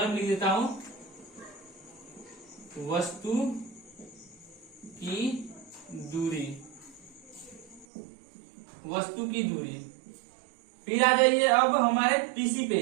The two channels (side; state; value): left; drops out; at 7.9 s